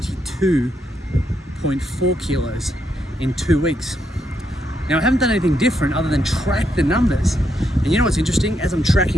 kilos in 2 weeks. Now, I haven't done anything different other than track the numbers. And you know what's interesting? As I'm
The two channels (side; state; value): both; normal; correlation 0.79